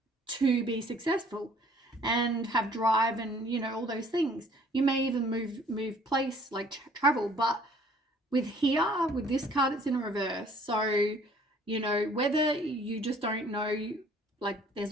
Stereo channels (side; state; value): both; normal; correlation 0.57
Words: to be successful and have drive and, you know, all those things. You may even move place, like travel, but with this card, it's in reverse. So, you know, whether you just don't know, like